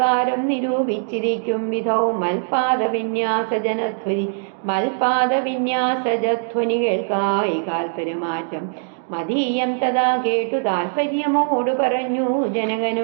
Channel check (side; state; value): left; silent; digital silence